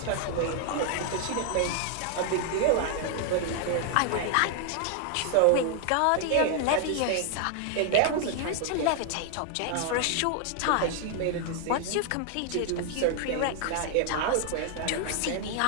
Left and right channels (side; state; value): both; different; correlation 0.00